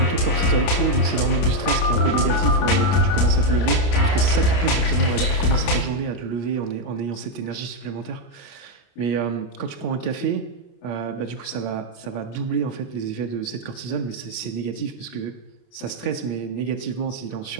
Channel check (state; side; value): late; right; 29 ms